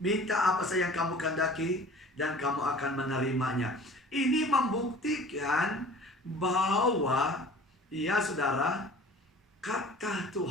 minta apa saja yang kamu kehendaki dan kamu akan menerimanya. Ini membuktikan bahwa ya saudara, kata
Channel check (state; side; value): normal; both; correlation 0.45